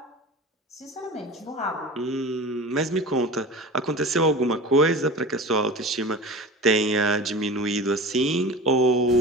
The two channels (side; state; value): both; normal; correlation 0.34